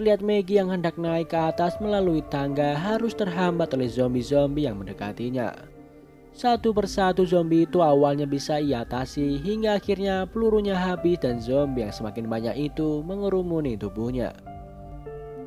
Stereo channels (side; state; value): both; identical; correlation 1.00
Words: Maggie yang hendak naik ke atas melalui tangga harus terhambat oleh zombie-zombie yang mendekatinya. Satu persatu zombie itu awalnya bisa ia atasi hingga akhirnya pelurunya habis dan zombie yang semakin banyak itu mengerumuni tubuhnya.